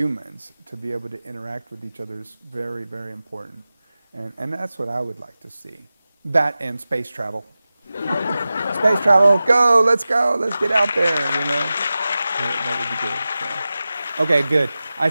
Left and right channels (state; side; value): inverted; both; correlation -0.95